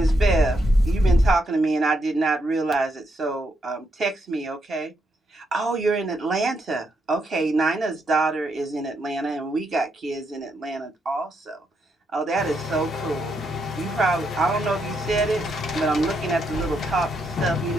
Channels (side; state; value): both; normal; correlation 0.79